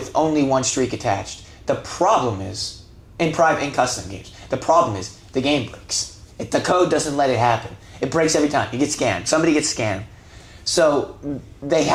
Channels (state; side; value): identical; both; correlation 1.00